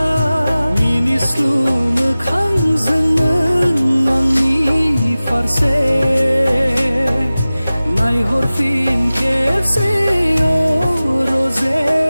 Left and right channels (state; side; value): inverted; both; correlation -0.97